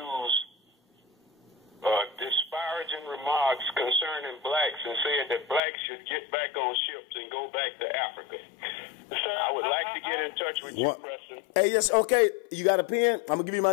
disparaging remarks concerning blacks and said that blacks should get back on ships and go back to Africa. So I would like to get in touch with you, Preston. Hey, yes, okay. You got a pen? I'm going to give you my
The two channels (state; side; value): drops out; right; at 5.6 s